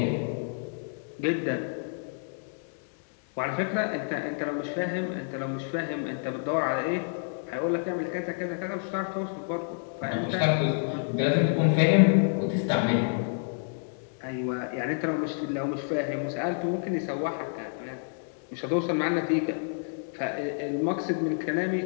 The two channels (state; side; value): silent; right; digital silence